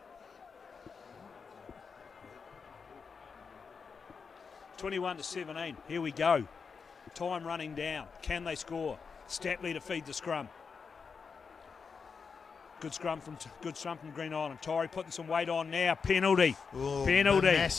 Here we go. Time running down. Can they score? Stapley to feed the scrum. Good scrum from Green Island. Taieri putting some weight on now. Penalty. Ooh, penalty.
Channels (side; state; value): right; quieter; 5.5 dB